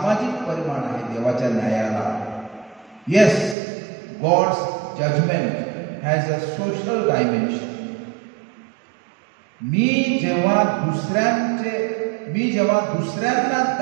परिमाण आहे देवाच्या न्यायाला. Yes, God's judgment has a social dimension. मी जेव्हा दुसऱ्यांना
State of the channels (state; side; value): drops out; left; at 3.6 s